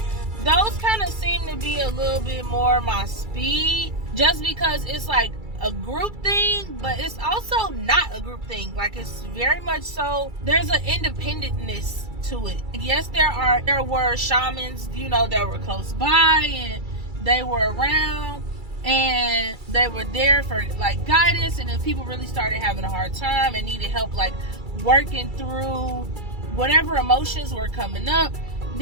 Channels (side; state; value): left; late; 2.3 ms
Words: those kind of seem to be a little bit more my speed, just because it's like a group thing, but it's also not a group thing. Like, it's very much so, there's an independentness to it. Yes, there were shamans, you know, that were close by and they were around and they were there for like guidance, and if people really started having a hard time and needed help like working through whatever emotions were coming up,